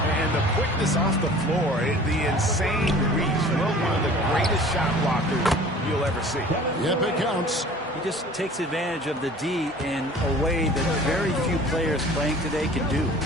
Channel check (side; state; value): both; normal; correlation 0.46